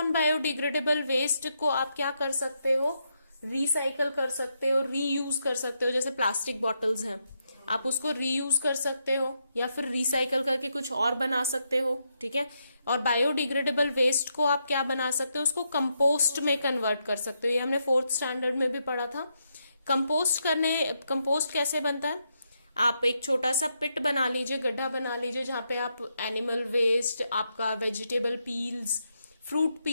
बायोडिग्रेडेबल वेस्ट को आप क्या कर सकते हो, रिसाइकल कर सकते हो, रीयूज कर सकते हो. जैसे प्लास्टिक बॉटल्स हैं, आप उसको रीयूज कर सकते हो या फिर रिसाइकल करके कुछ और बना सकते हो, ठीक है। और बायोडिग्रेडेबल वेस्ट को आप क्या बना सकते हो, उसको कंपोस्ट में कन्वर्ट कर सकते हो। ये हमने 4th स्टैंडर्ड में भी पढ़ा था। कंपोस्ट कैसे बनता है, आप एक छोटा सा पिट बना लीजिए, गड्ढा बना लीजिए, जहां पे आप एनिमल वेस्ट, आपका वेजिटेबल पील्स, फ्रूट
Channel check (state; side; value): inverted; both; correlation -0.81